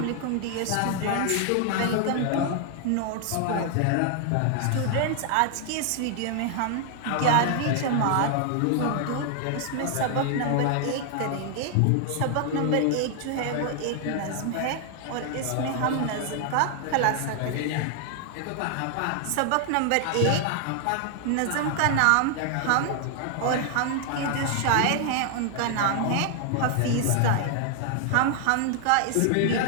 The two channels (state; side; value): different; both; correlation 0.00